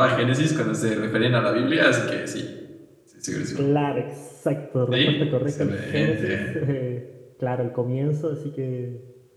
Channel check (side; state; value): both; identical; correlation 1.00